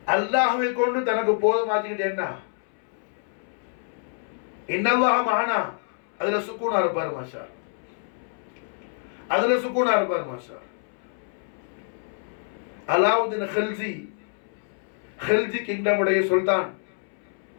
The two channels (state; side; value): silent; right; 61 dB below the other